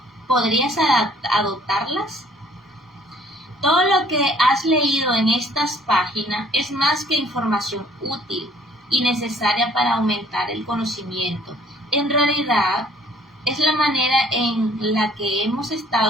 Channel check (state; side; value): normal; both; correlation 0.58